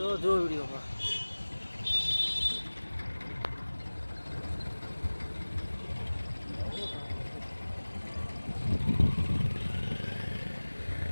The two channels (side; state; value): both; inverted; correlation -1.00